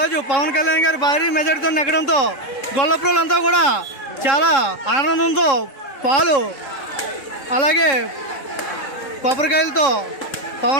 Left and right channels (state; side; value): late; right; 3.7 ms